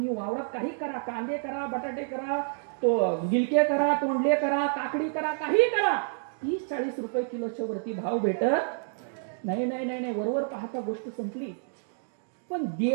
वावरात काही करा, कांदे करा, बटाटे करा, तो गिलके करा, तोंडले करा, काकडी करा, काही करा, 30-40 रुपये किलोच्या वरती भाव भेटत नाही. नाही नाही नाही, वरवर पाहता गोष्ट संपली. पण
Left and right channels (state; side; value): silent; left; digital silence